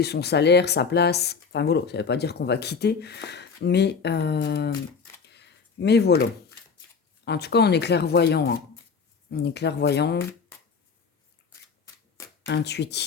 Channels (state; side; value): quieter; right; 5.6 dB